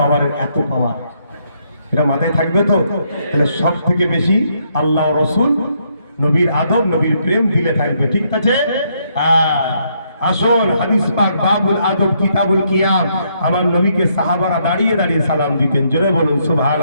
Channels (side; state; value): both; inverted; correlation -0.74